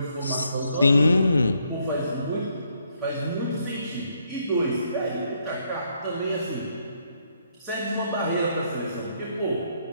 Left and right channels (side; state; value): both; inverted; correlation -0.73